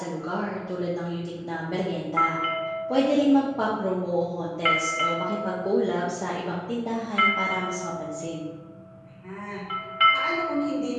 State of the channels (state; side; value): identical; both; correlation 1.00